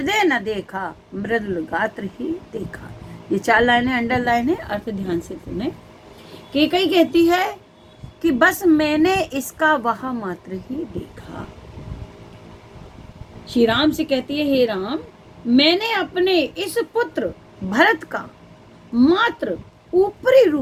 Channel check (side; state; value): both; identical; correlation 1.00